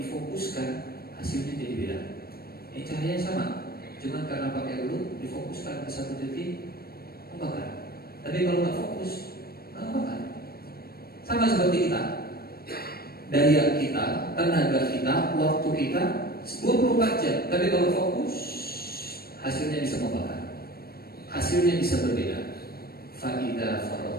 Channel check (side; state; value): right; late; 0.44 ms